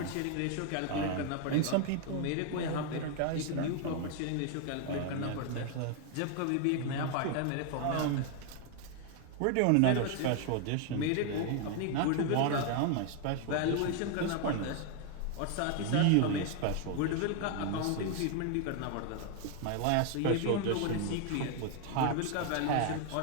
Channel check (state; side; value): different; both; correlation 0.00